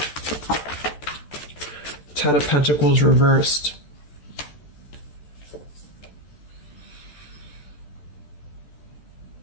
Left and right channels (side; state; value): right; late; 14 ms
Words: Ten of Pentacles reversed.